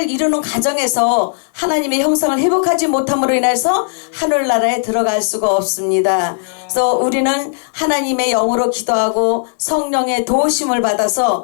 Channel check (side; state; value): right; silent; 58 dB below the other